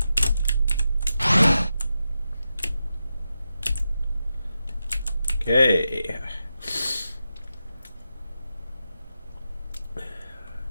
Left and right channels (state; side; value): inverted; both; correlation -0.89